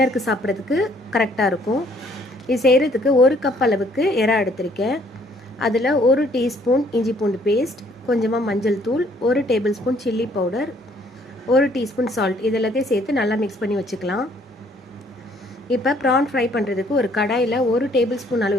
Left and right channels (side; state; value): both; normal; correlation 0.63